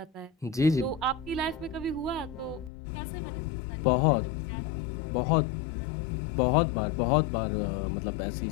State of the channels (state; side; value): drops out; right; at 2.7 s